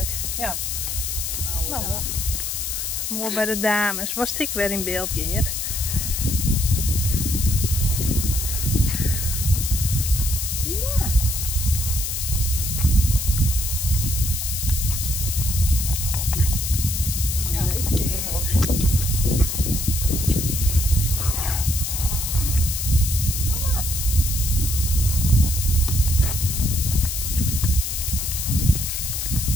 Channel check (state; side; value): noise; left; hiss, 2 dB below the sound